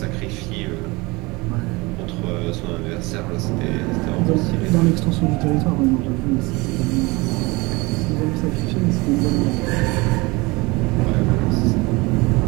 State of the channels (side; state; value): left; quieter; 24.2 dB